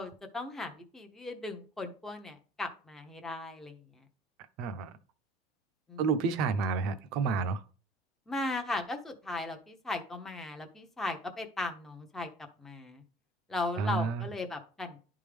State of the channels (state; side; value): normal; both; correlation 0.50